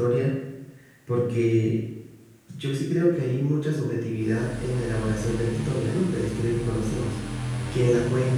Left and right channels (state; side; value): identical; both; correlation 1.00